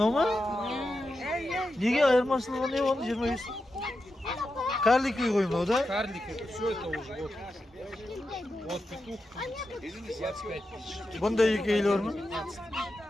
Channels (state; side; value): normal; both; correlation 0.89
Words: ма? Неге айырмашылығы не оны 25? Карлик үй ғой мынау да? Карлик, это все это уже вот. Вот петух 25 тысяч. Бұнда екі үйлі бар ма?